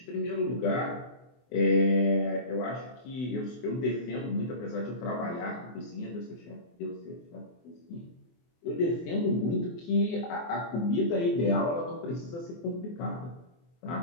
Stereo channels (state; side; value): late; right; 24 ms